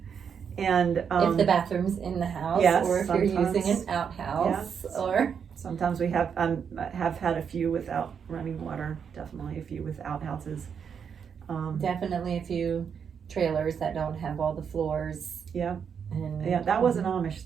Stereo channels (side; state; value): left; quieter; 7.1 dB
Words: And if the bathroom's in the house, yes, or if you're using an outhouse, yes. or sometimes we have had a few without running water. Definitely a few with outhouses. Definitely a few trailers that don't have all the floors. Yeah. And, yeah, that wasn't Amish